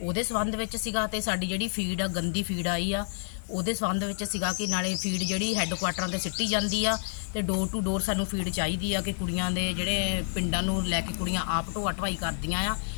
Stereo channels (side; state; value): right; silent; digital silence